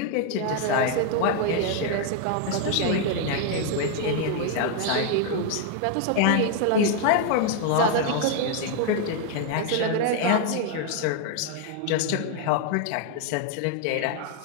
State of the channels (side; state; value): both; different; correlation 0.00